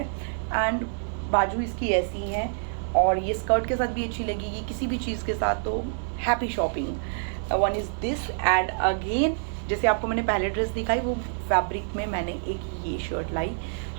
एंड बाजू इसकी ऐसी है, और ये स्कर्ट के साथ भी अच्छी लगेगी, किसी भी चीज़ के साथ, तो happy shopping. 1 is this. And again जैसे आपको मैंने पहले ड्रेस दिखाई, वो फैब्रिक में मैंने एक ये शर्ट लाई,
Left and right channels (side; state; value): left; silent; digital silence